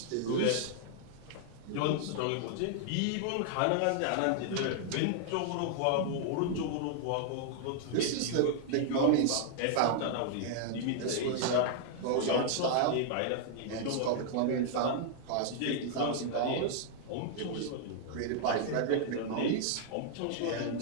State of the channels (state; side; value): different; both; correlation -0.01